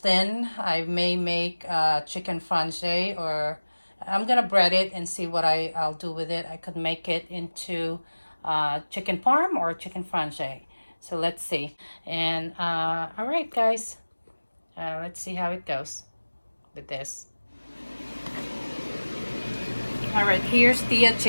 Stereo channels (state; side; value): inverted; both; correlation -1.00